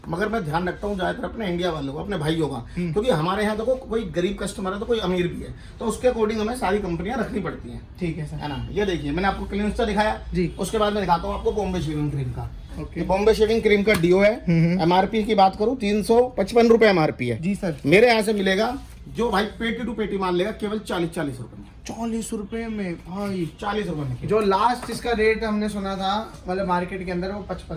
मगर मैं ध्यान रखता हूँ ज्यादातर अपने इंडिया वालों को, अपने भाइयों का। क्योंकि हमारे यहाँ देखो कोई गरीब कस्टमर है तो कोई अमीर भी है, तो उसके अकॉर्डिंग हमें सारी कंपनियां रखनी पड़ती हैं। ठीक है सर। है ना। ये देखिए, मैंने आपको क्लिंस्टा दिखाया जी। उसके बाद मैं दिखाता हूँ आपको बॉम्बे शेविंग क्रीम का। ओके। बॉम्बे शेविंग क्रीम का डिओ है। एमआरपी की बात करूँ 355 रुपए एमआरपी है। जी सर। मेरे यहाँ से मिलेगा जो भाई पेटी टू पेटी मान लेगा केवल 40 रुपए में। 40 रुपए में भाई? 40 रुपए में। जो लास्ट इसका रेट हमने सुना था मतलब मार्केट के अंदर, वो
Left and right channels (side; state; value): both; identical; correlation 1.00